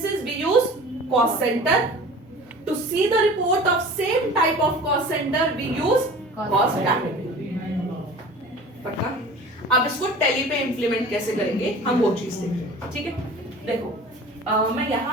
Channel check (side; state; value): both; normal; correlation 0.41